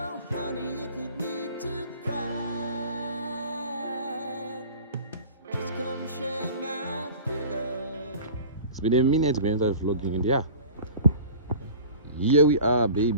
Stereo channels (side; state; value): both; inverted; correlation -0.40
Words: honey, if you need to cry, just come share my pillow. It's been a minute when I started vlogging, and yeah, here we are,